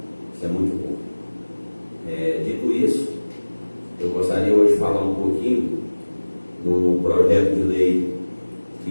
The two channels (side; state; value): both; inverted; correlation -1.00